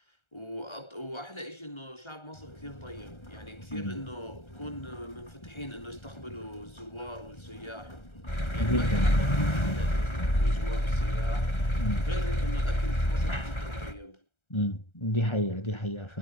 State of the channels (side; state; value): right; late; 1.3 ms